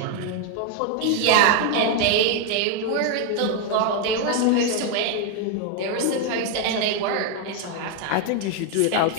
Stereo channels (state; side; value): different; both; correlation 0.01